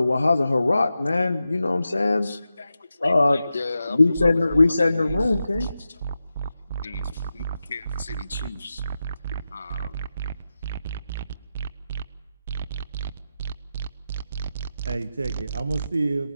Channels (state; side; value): inverted; both; correlation -0.90